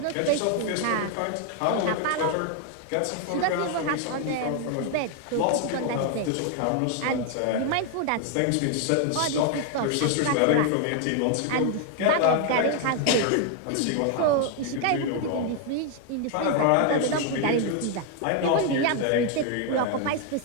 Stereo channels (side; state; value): both; different; correlation 0.01